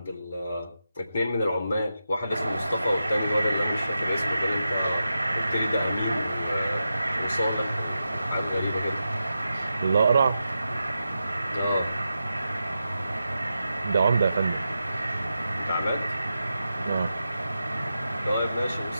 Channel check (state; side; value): inverted; both; correlation -0.89